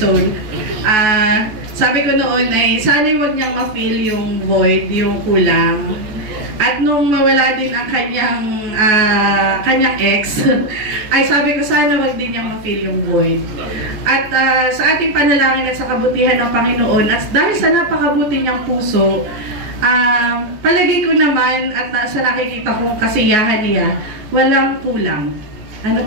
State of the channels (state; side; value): late; left; 13 ms